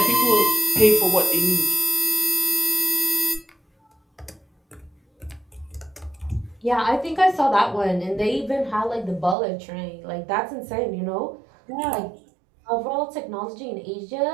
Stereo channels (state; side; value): drops out; left; at 9.3 s